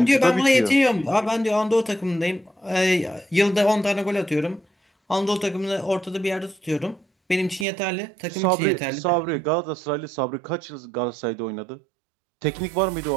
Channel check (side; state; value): left; drops out; at 7.7 s